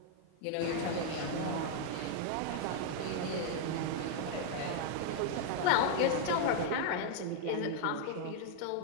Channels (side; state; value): both; different; correlation 0.00